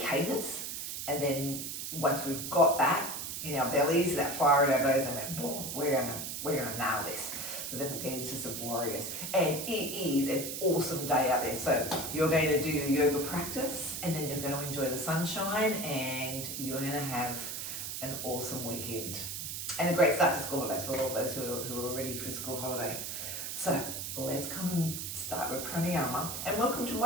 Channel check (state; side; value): noise; right; hiss, 5 dB below the sound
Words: And then once we've got that in our bellies, that fire in our bellies, and then boom, we're gonna nail this. So then we'll get into some warriors. And it is an awesome day out there. So you're going to do your yoga practice, and then you're going to enjoy the sunshine, and you're going to have an awesome weekend. And a great start to school holidays for all those who are ready for school holidays. So let's come and start with pranayama. And welcome to